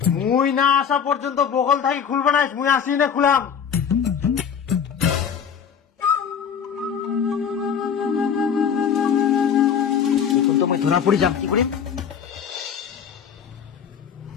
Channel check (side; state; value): right; quieter; 7.5 dB